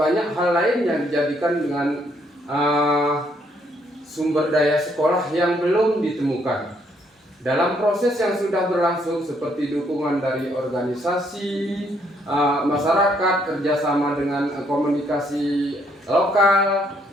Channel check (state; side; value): normal; both; correlation 0.70